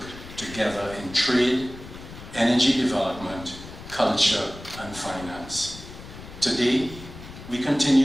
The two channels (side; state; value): left; noise; rumble, 15 dB below the sound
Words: together in trade, energy development, culture, and finance. Today, we